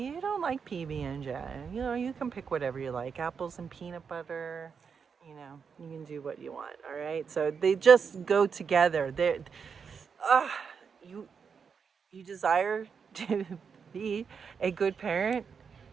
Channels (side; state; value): left; quieter; 6.2 dB